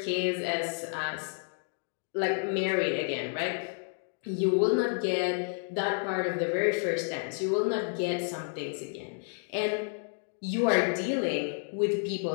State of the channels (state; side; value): silent; right; 57 dB below the other